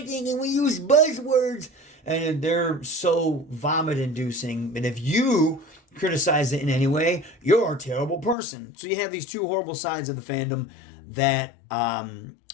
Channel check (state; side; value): drops out; right; at 8.3 s